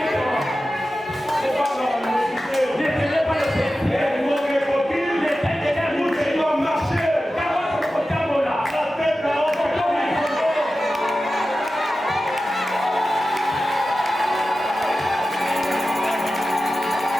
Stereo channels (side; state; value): both; normal; correlation 0.94